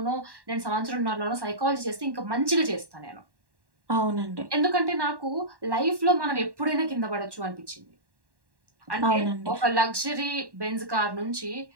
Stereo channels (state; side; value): late; left; 1.1 ms